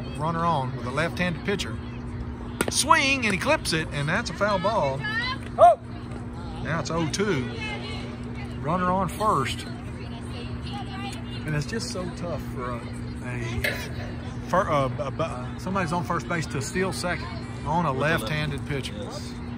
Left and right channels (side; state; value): both; identical; correlation 1.00